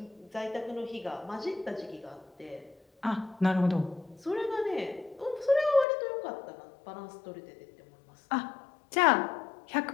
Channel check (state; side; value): drops out; right; at 5.9 s